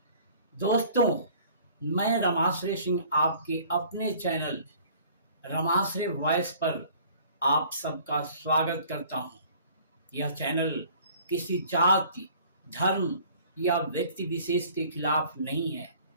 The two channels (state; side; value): inverted; both; correlation -0.52